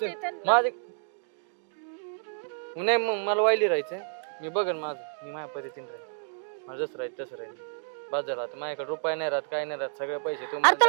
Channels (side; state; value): left; silent; digital silence